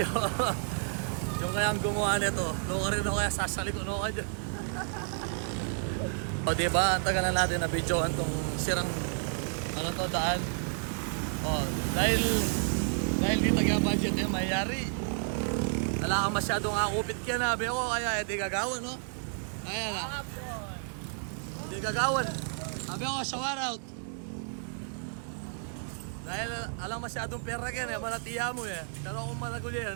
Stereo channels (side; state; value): left; silent; 57 dB below the other